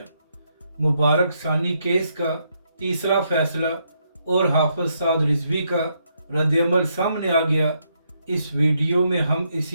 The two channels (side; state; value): both; inverted; correlation -0.77